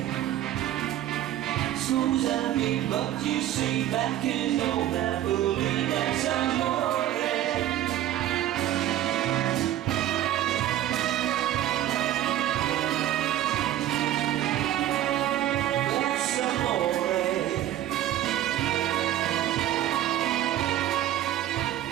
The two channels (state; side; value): quieter; left; 12.7 dB